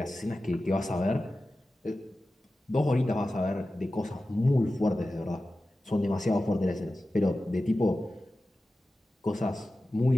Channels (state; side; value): normal; both; correlation 0.94